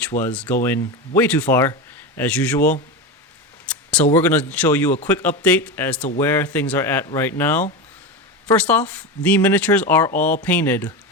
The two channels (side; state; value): both; normal; correlation 0.19